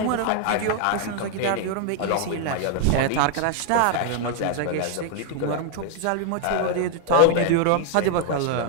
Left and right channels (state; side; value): different; both; correlation 0.00